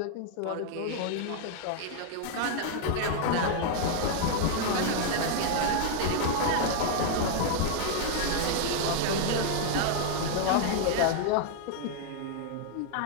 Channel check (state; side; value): different; both; correlation -0.01